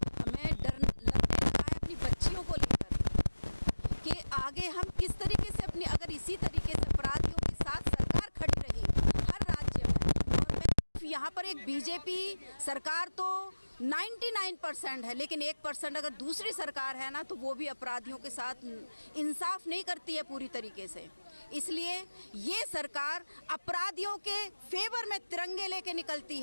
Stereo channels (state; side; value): inverted; both; correlation -1.00